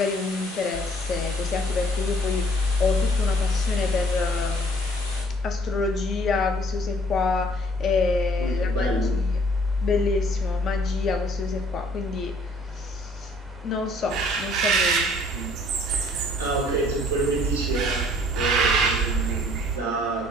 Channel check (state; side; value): normal; both; correlation 0.58